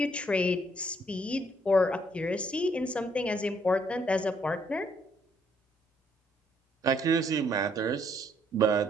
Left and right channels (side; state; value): both; normal; correlation 0.68